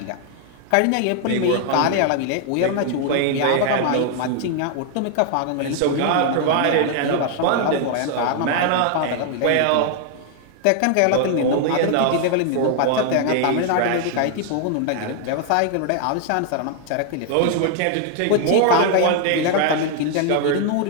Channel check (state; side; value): different; both; correlation 0.00